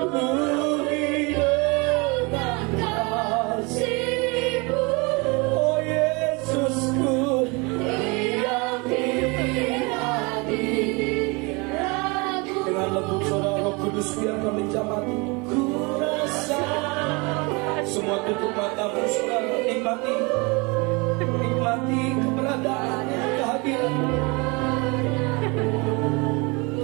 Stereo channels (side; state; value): left; quieter; 28.1 dB